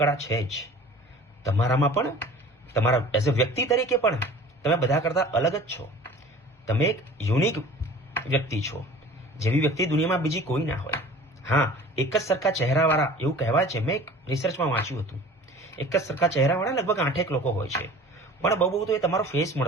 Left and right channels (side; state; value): both; normal; correlation 0.44